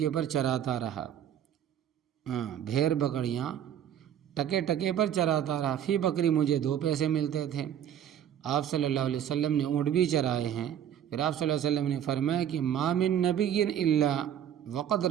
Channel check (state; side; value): quieter; left; 9.9 dB